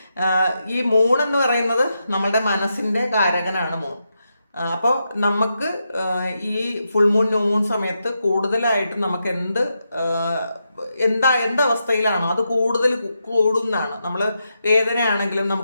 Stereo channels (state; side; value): inverted; both; correlation -0.85